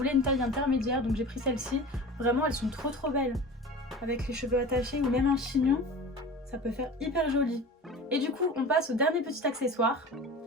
une taille intermédiaire, donc j'ai pris celle-ci. Vraiment, elles sont trop belles. Avec les cheveux attachés ou même un chignon, ça peut faire hyper joli. Et du coup, on passe au dernier petit accessoire.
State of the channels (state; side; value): normal; both; correlation 0.36